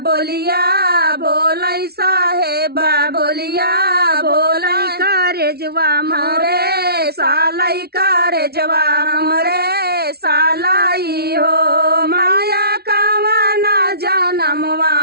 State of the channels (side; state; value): left; late; 0.45 ms